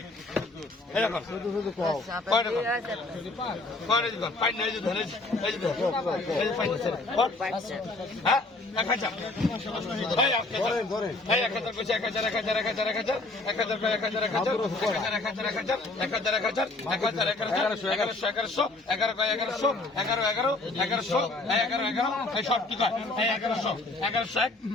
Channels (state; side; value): quieter; right; 3.1 dB